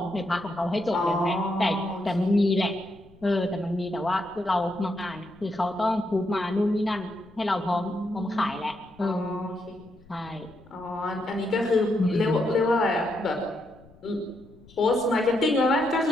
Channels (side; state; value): left; noise; rumble, 25 dB below the sound